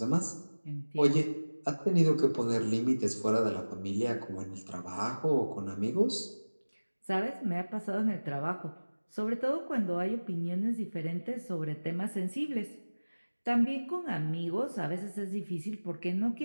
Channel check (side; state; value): both; inverted; correlation -1.00